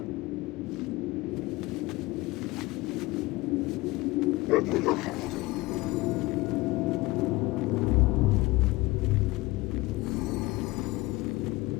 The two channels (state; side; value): quieter; right; 20.9 dB